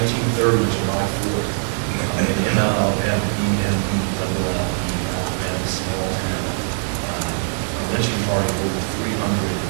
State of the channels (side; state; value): left; silent; digital silence